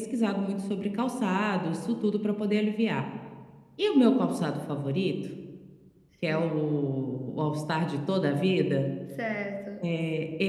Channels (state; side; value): identical; both; correlation 1.00